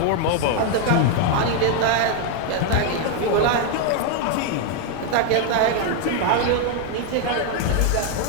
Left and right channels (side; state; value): both; different; correlation 0.00